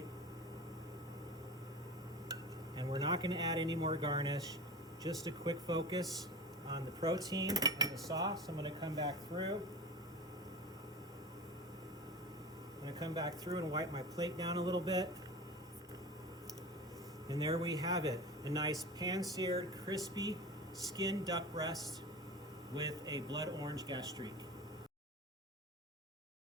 And we're not gonna add any more garnish, just a quick focus on the protein and the sauce. I'm gonna come back through. I'm gonna come back through and wipe my plate down a little bit. And there we have it, a nice pan-seared, crispy skin duck breast with a blood orange gastrique.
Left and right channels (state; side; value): normal; both; correlation 0.32